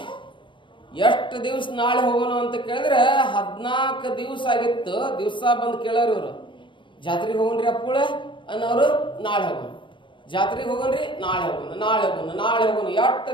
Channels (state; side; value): late; right; 0.24 ms